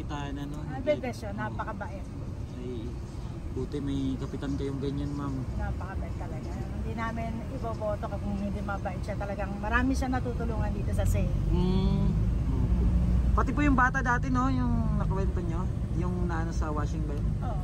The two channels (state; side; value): identical; both; correlation 1.00